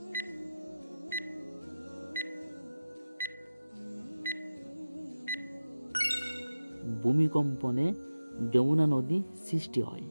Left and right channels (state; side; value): inverted; both; correlation -0.94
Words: ভূমিকম্পনে যমুনা নদী সৃষ্টি হয়।